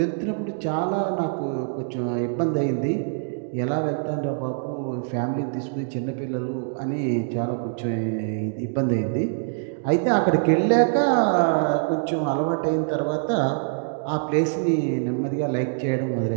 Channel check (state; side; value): silent; left; digital silence